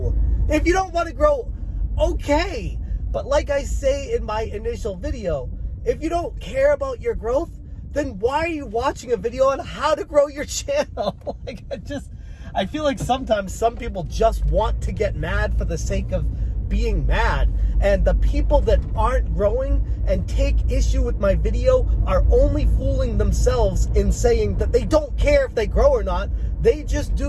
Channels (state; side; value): identical; both; correlation 1.00